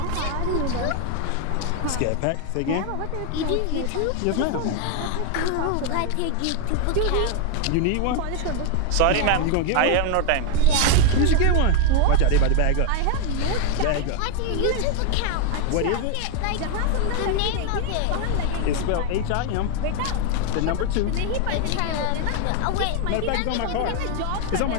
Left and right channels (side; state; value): both; different; correlation 0.01